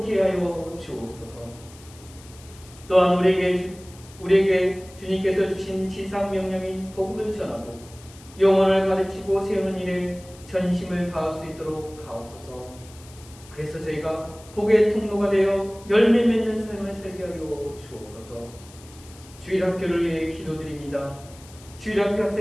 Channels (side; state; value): left; noise; hiss, 22 dB below the sound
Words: 하여 주옵소서. 또한 우리에게 주님께서 주신 지상 명령인 복음을 전하고 영혼을 가르치고 세우는 일에 전심을 다할 수 있도록 하옵소서. 그래서 저희가 복의 통로가 되어 열매 맺는 삶을 살게 하여 주옵소서. 주일학교를 위해 기도드립니다. 주일학교